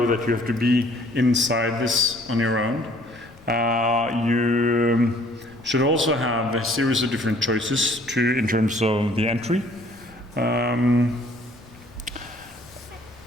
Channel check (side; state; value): left; noise; rumble, 25 dB below the sound